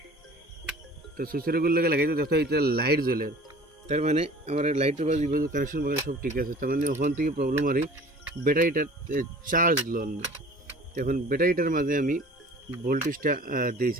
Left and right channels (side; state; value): both; normal; correlation 0.45